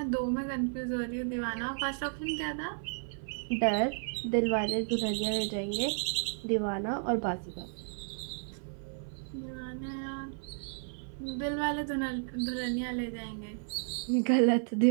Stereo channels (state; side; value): silent; left; 56 dB below the other